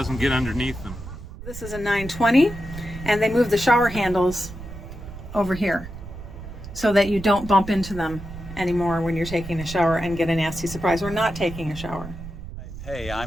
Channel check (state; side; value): noise; right; rumble, 12 dB below the sound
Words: get underneath them. This is a 920, and they move the shower handles over here so that you don't bump into them anymore when you're taking a shower and get a nasty surprise or not taking a shower. Hey,